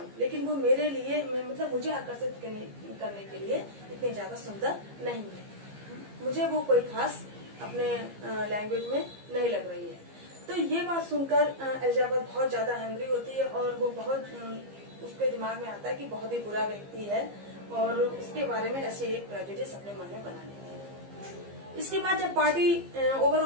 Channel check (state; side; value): late; left; 15 ms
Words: लेकिन वो मेरे लिए मतलब मुझे आकर्षित करने के लिए इतनी ज्यादा सुंदर नहीं है, मुझे वो कोई खास अपने लैंग्वेज में नहीं लग रही है। तो ये बात सुनकर एलिजाबेथ बहुत ज्यादा एंग्री होती है और वो बहुत उसके दिमाग में आता है कि बहुत ही बुरा व्यक्ति है और उसके बारे में ऐसे एक प्रेजुडिस अपने मन में बना लेती है। इसके बाद जब पार्टी ओवर